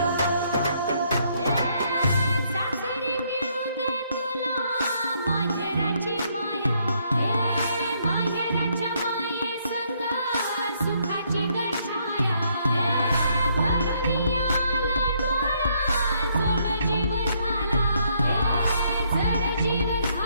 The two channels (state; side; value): inverted; both; correlation -0.71